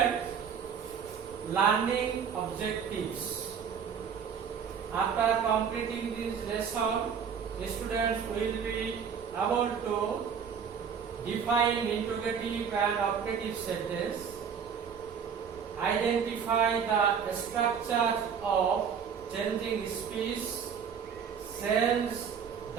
learning objectives. After completing this lesson, the students will be able to define interrogative and operative sentence, identify the structure of changing speech, change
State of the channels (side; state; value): left; quieter; 7.1 dB